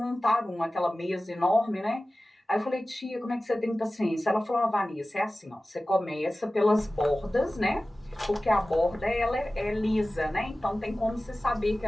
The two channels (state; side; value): normal; both; correlation 0.96